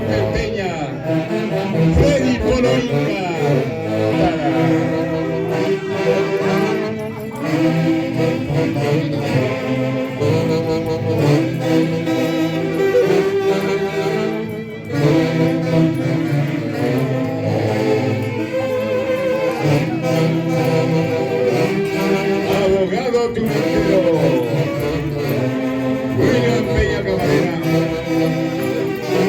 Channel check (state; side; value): identical; both; correlation 1.00